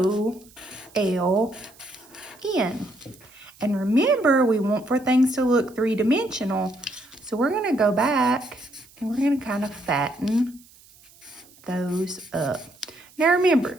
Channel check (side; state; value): right; noise; hiss, 26 dB below the sound